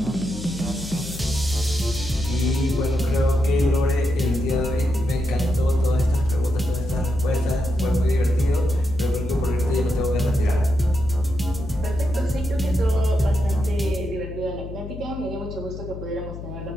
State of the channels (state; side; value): noise; left; hum, 10 dB below the sound